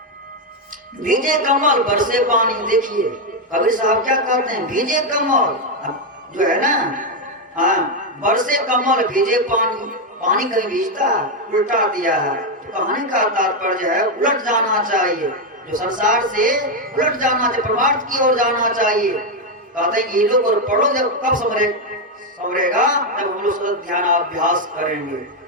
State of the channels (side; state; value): both; normal; correlation 0.04